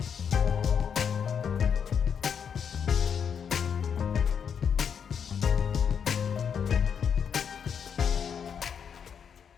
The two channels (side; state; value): right; quieter; 7.3 dB